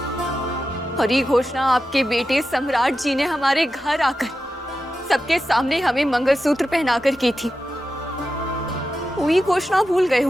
और ये घोषणा आपके बेटे सम्राट जी ने हमारे घर आकर सबके सामने हमें मंगलसूत्र पहनाकर की थी। वो ये घोषणा भूल गए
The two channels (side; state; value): both; normal; correlation 0.91